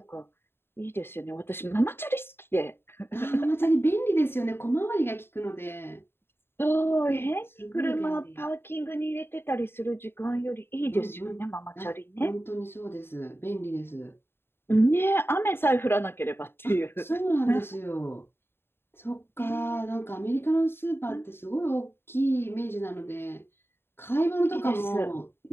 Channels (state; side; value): late; right; 0.11 ms